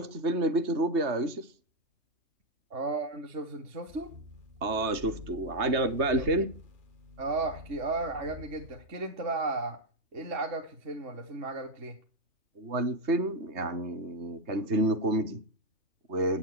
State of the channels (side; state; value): left; late; 3.2 ms